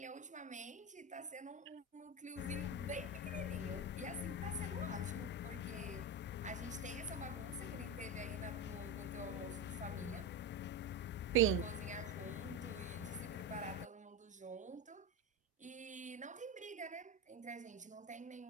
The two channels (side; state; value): both; normal; correlation 0.16